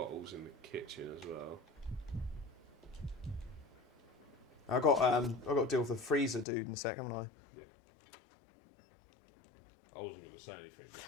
in the kitchen as well. I got to deal with the freezer dude in a sec, haven't I? Yeah. I wasn't going to say anything.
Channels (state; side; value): drops out; right; at 6.5 s